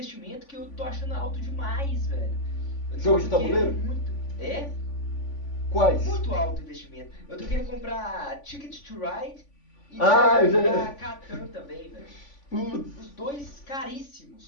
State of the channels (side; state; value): right; late; 3.5 ms